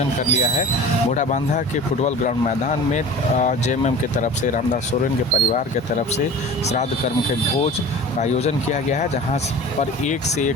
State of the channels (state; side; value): normal; both; correlation 0.39